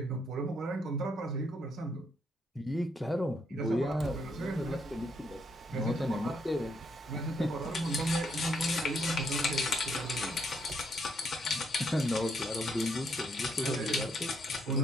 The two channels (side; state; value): both; normal; correlation 0.74